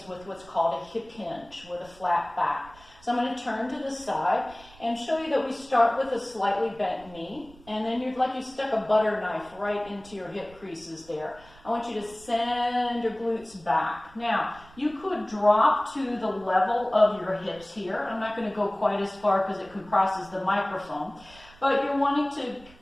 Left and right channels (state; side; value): noise; right; rumble, 24 dB below the sound